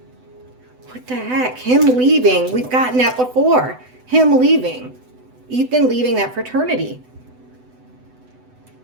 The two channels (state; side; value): late; left; 7.9 ms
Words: What the heck? Him leaving. We've gotten that before. Him leaving. Ethan leaving that fraternity.